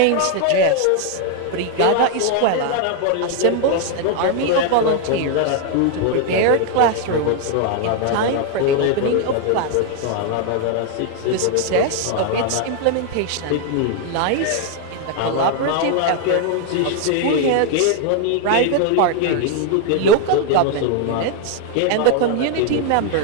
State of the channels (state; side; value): different; both; correlation 0.00